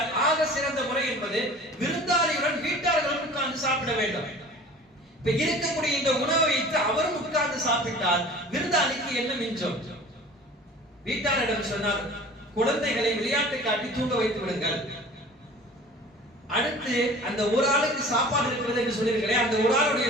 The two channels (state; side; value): normal; both; correlation 0.43